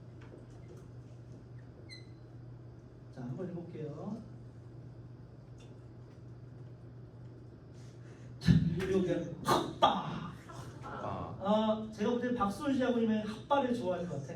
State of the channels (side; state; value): both; identical; correlation 1.00